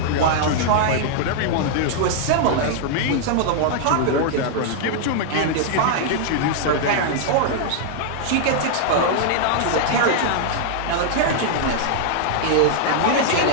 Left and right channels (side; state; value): both; different; correlation -0.01